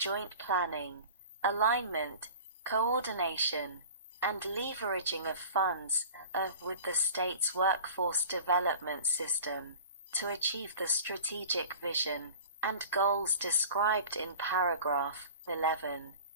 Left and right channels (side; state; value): both; inverted; correlation -0.41